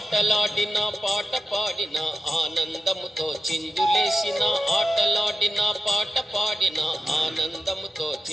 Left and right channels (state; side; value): normal; both; correlation 0.92